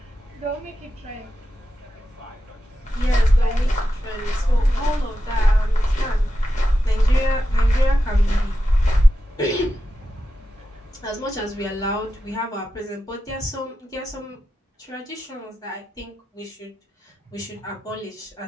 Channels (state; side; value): normal; both; correlation 0.90